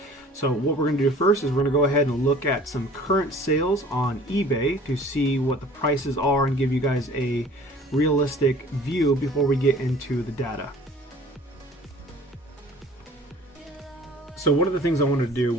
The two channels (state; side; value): normal; both; correlation 0.49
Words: So what we're going to do first is we're going to go ahead and look at some current sales on eBay to see what the prices are and give you guys a realistic view before we get into the data. So one of the things I want to do